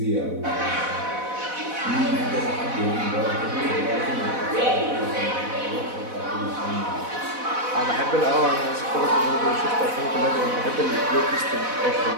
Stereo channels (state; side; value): late; left; 4.0 ms